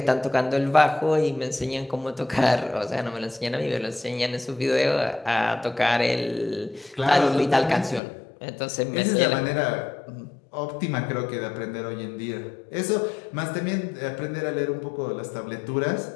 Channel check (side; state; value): right; drops out; at 8.0 s